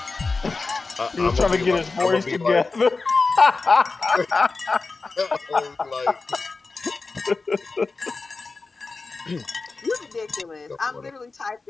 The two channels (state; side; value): quieter; right; 3.9 dB